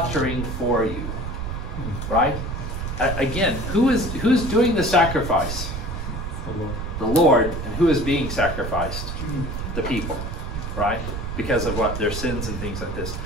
for you. Right? Again, who's doing the sacrifice? The Lord. And who is being sacrificed? The people. Right? Because of what? Their sins and things like this.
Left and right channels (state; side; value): noise; right; rumble, 5 dB below the sound